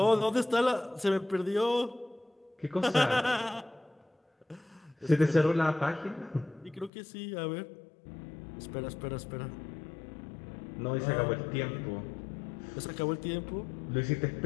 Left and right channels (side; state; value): right; drops out; at 6.9 s